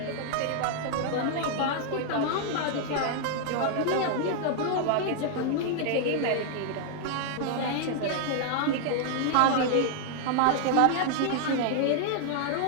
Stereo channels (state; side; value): different; both; correlation 0.00